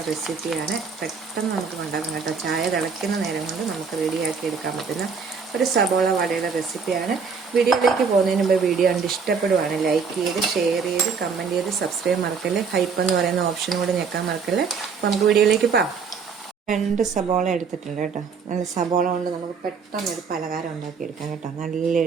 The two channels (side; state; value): left; quieter; 5.6 dB